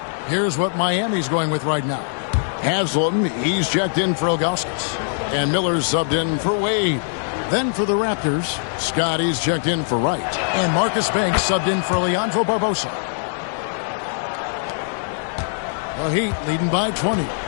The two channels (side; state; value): right; silent; digital silence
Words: Here's what Miami's going with right now. Haslam, he's checked in for Ilgauskas. And Miller's subbed in for Wade. Then for the Raptors, Scotty's checked in for Wright. And Marcus Banks subbed in for Leandro Barbosa. The Heat leading by 20.